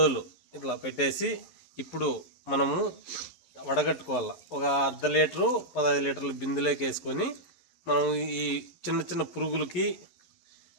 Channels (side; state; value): right; late; 11 ms